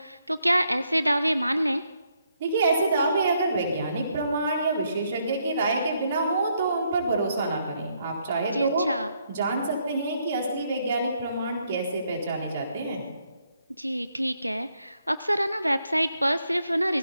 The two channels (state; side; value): inverted; both; correlation -0.75